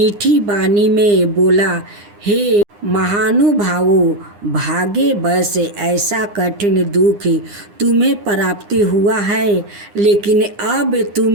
वाणी में बोला, हे महानुभावों, भागे बस ऐसा कठिन दुख तुम्हें प्राप्ति हुआ है, लेकिन अब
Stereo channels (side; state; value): left; late; 9.8 ms